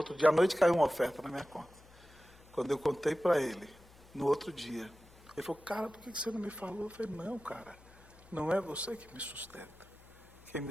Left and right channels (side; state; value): left; noise; hum, 24 dB below the sound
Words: dia, à noite caiu uma oferta na minha conta. Quando eu contei para ele, no outro dia, ele falou, cara, por que você não me falou? Eu falei, não, cara, não é você que me sustenta. Quem